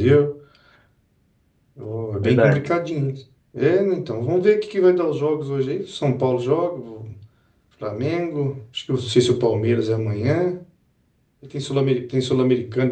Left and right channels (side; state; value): both; identical; correlation 1.00